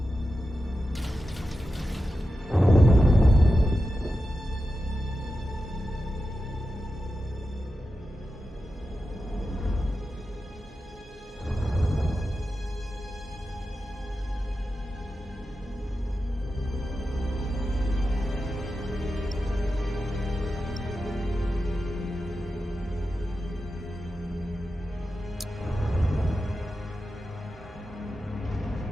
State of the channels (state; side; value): normal; both; correlation 0.91